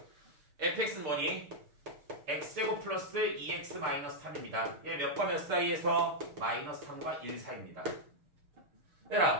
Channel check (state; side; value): late; left; 6.7 ms